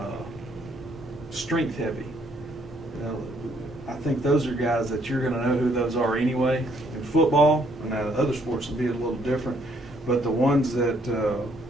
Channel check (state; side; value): normal; both; correlation 0.68